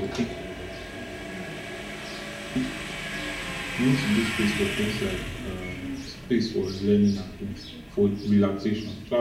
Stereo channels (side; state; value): both; identical; correlation 1.00